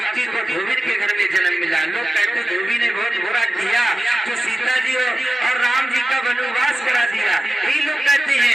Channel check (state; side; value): normal; both; correlation 0.93